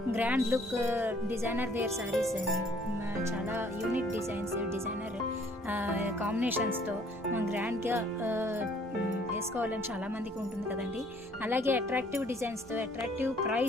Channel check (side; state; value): right; noise; hum, 26 dB below the sound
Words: grand look designer wear saris చాలా యూనిక్ డిజైనర్ కాంబినేషన్స్తో గ్రాండ్గా వేసుకోవాలని చాలామందికి ఉంటుంది కదండి. అలాగే అట్రాక్టివ్ డిజైన్స్తో అట్రాక్టివ్